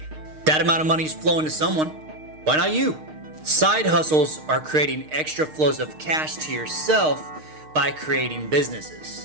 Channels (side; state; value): left; late; 6.5 ms